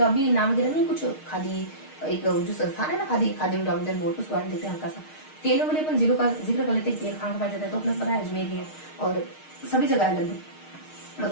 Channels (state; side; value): late; right; 6.5 ms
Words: भी नाम वगैरह नहीं, कुछ खादी एक जो संस्थान है ना, खादी डेवलपमेंट बोर्ड, उसके बारे में देखते हैं हल्का सा। तेल वाले अपन जिलों का जिक्र कर लेते हैं। तेल कहाँ पाया जाता है? तो अपने पता है अजमेर है, और सभी जगह लगभग,